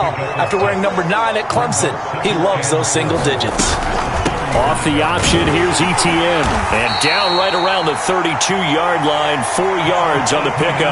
after wearing number 9 at Clemson. He loves those single digits. Off the option, here's Etienne. And down right around the 32-yard line, 4 yards on the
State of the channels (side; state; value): both; identical; correlation 1.00